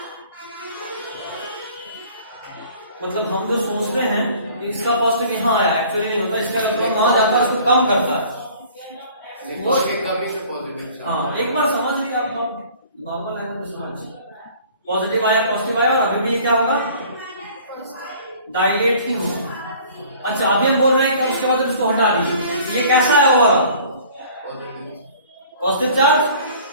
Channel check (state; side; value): inverted; both; correlation -0.50